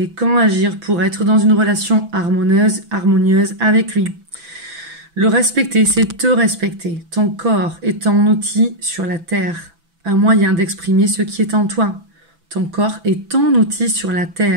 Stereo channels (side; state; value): left; late; 6.0 ms